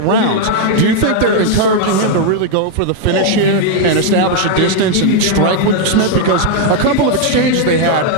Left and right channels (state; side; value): different; both; correlation 0.00